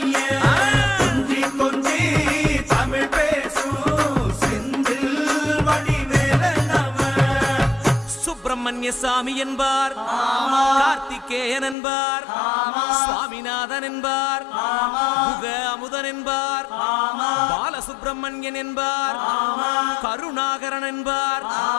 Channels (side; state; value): right; drops out; at 11.8 s